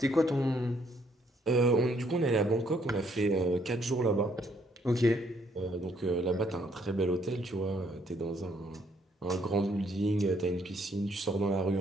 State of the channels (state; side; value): normal; both; correlation 0.68